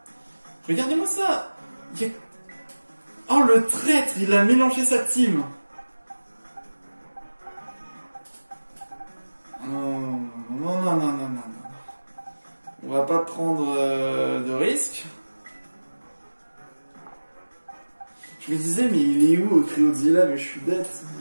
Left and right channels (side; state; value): both; inverted; correlation -1.00